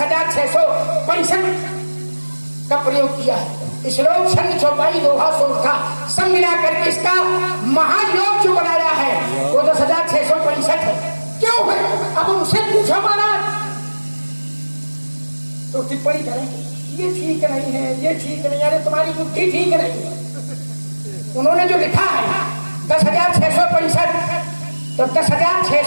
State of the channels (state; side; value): inverted; both; correlation -1.00